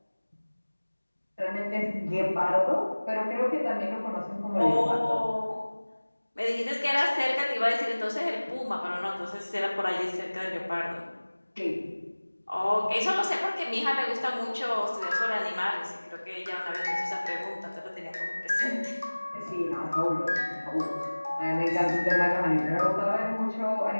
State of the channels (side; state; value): both; inverted; correlation -1.00